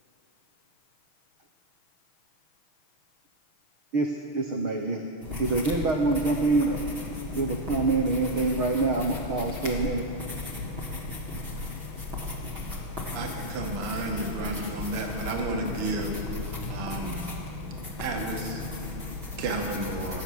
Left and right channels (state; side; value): late; left; 6.2 ms